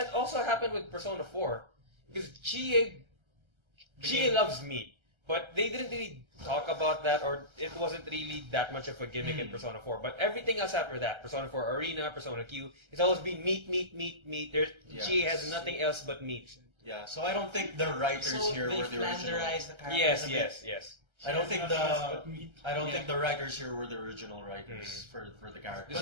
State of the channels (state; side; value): late; left; 1.3 ms